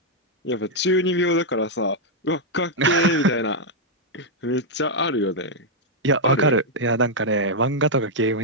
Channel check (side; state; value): both; normal; correlation -0.03